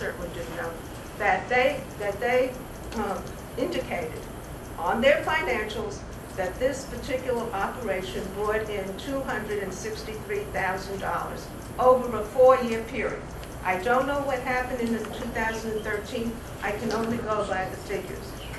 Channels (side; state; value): both; identical; correlation 1.00